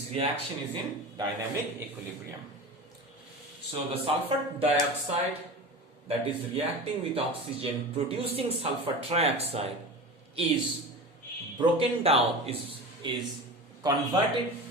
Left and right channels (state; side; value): normal; both; correlation 0.31